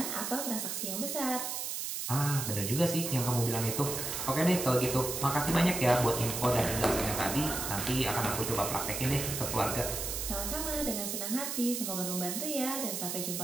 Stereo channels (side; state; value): right; noise; hiss, 3 dB below the sound